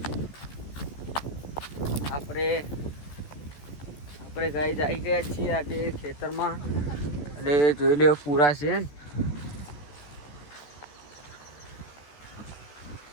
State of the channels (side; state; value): right; late; 14 ms